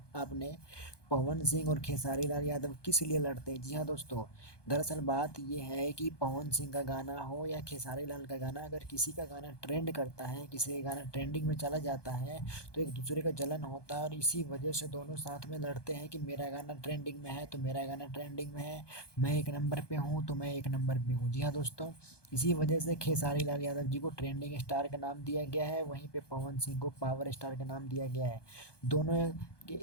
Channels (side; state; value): right; late; 1.2 ms